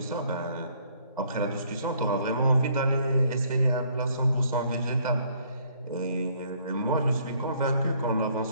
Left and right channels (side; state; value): both; inverted; correlation -0.64